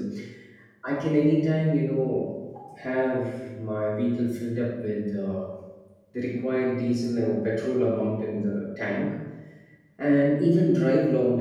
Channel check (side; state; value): both; identical; correlation 1.00